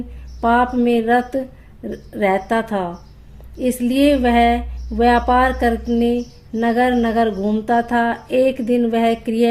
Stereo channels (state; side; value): identical; both; correlation 1.00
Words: पाप में रत रहता था, इसलिए वह व्यापार करने नगर नगर घूमता था। एक दिन वह